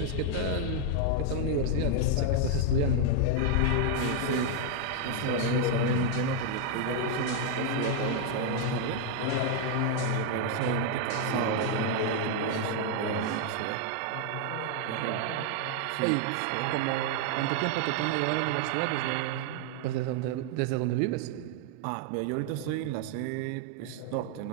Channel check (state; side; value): different; both; correlation 0.00